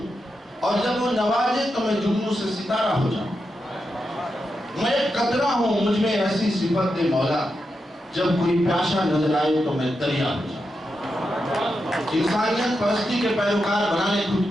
اور جب وہ نوازے تو میں جگنوں سے ستارہ ہو جاؤں۔ میں ایک قطرہ ہوں، مجھ میں ایسی صفت دے مولا، جب کوئی پیاسا نظر آئے تو میں دریا ہو جاؤں۔ انسانیت پرستی کے پیروکار بنانے خود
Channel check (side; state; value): both; normal; correlation 0.87